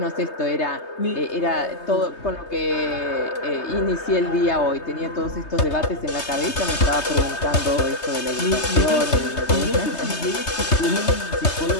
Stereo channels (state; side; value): late; right; 3.2 ms